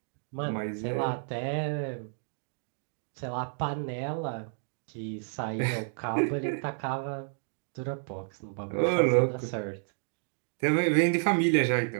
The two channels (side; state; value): left; silent; digital silence